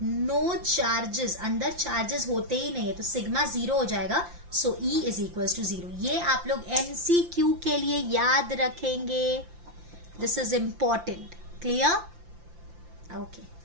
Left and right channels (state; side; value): late; left; 5.8 ms